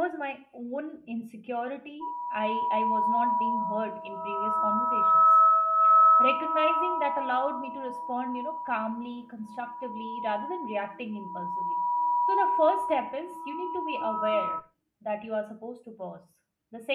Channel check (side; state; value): both; identical; correlation 1.00